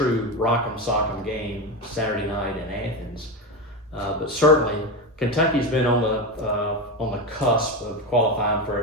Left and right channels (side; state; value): both; normal; correlation 0.17